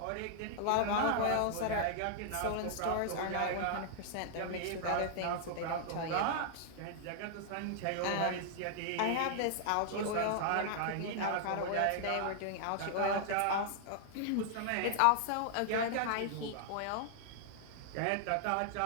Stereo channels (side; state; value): both; different; correlation -0.01